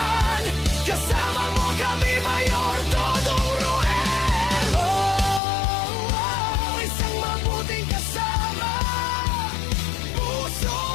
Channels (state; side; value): drops out; right; at 5.4 s